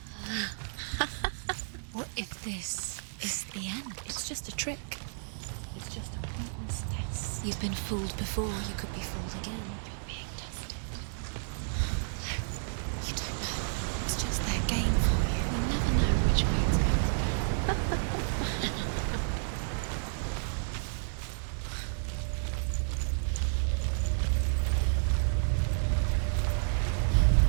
What if this is the end? It's just a trick. It's just a pointless test. You've been fooled before, you could be fooled again. You're being tested. You don't know. It's just their game for you. You never know which way it's going to go.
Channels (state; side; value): silent; left; digital silence